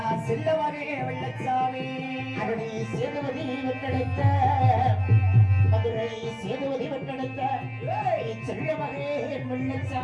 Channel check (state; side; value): identical; both; correlation 1.00